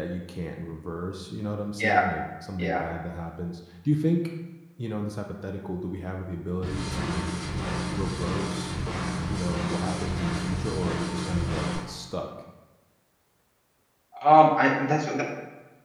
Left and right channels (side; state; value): both; identical; correlation 1.00